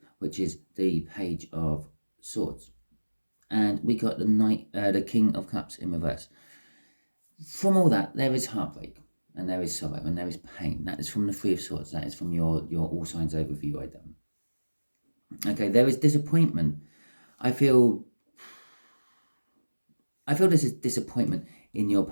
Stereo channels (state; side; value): inverted; both; correlation -1.00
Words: which is the Page of Swords, and we got the King of Cups in reverse. From all that, there is heartbreak and there is sorrow and there is pain. That is from the Three of Swords. That is from your All Signs overview I done. Okay, there is disappointment. I feel this is disappointment in your